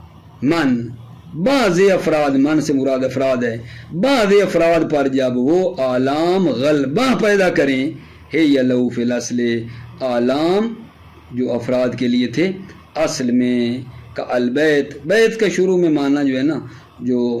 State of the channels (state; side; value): identical; both; correlation 1.00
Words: من، بعض افراد، من سے مراد افراد ہے، بعض افراد پر جب وہ اعلام غلبہ پیدا کریں ہے لہو فی الاصل، اعلام جو افراد کے لیے تھے اصل میں، کا البیت، بیت کا شروع میں معنی جو ہے نا، جو